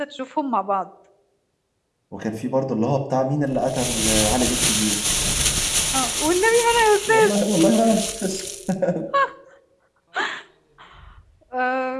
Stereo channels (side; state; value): both; identical; correlation 1.00